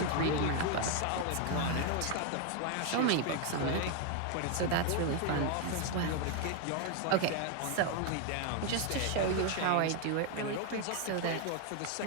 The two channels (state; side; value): different; both; correlation 0.01